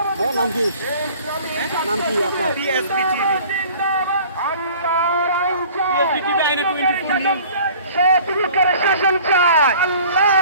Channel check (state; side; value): inverted; both; correlation -0.48